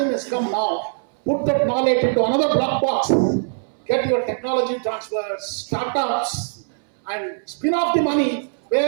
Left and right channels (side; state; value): left; silent; 64 dB below the other